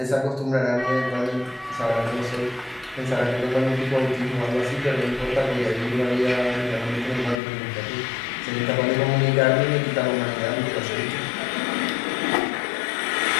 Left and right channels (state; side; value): drops out; right; at 7.4 s